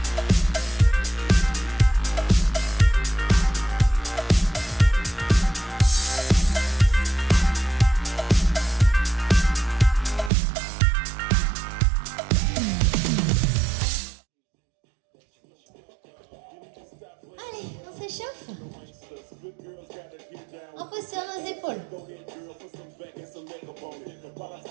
Allez, on s'échauffe. On pose sur nos épaules.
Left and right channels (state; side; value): drops out; left; at 10.3 s